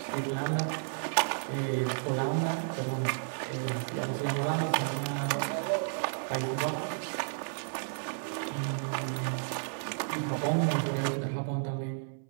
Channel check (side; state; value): left; silent; 56 dB below the other